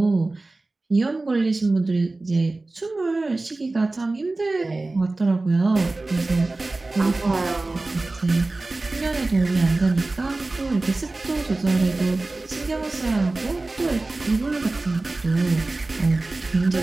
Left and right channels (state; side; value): quieter; left; 3.1 dB